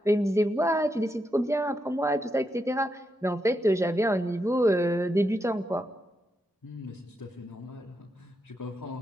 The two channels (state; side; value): normal; both; correlation 0.83